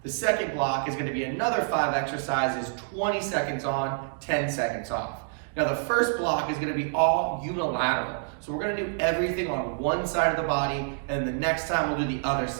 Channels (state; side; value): silent; left; digital silence